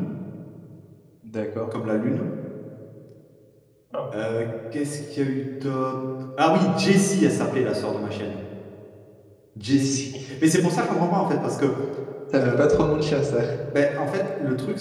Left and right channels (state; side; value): identical; both; correlation 1.00